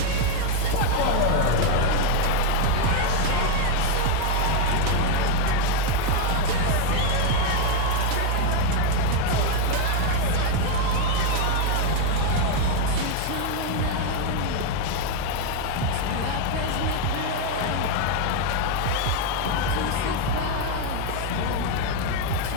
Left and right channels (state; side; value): different; both; correlation 0.01